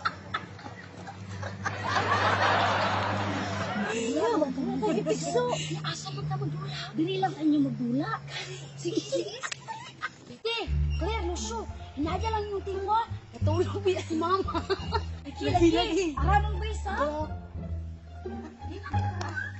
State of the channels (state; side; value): identical; both; correlation 1.00